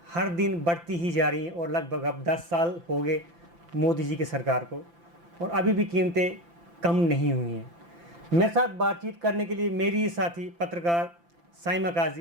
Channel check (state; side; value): late; left; 5.9 ms